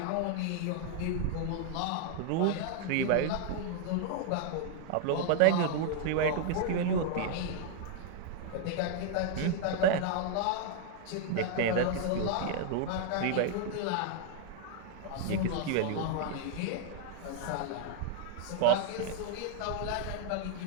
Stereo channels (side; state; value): both; different; correlation 0.00